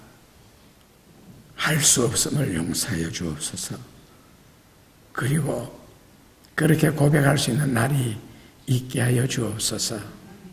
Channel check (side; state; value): both; identical; correlation 1.00